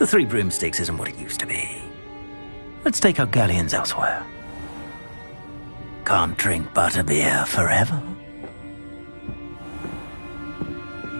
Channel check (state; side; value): inverted; both; correlation -1.00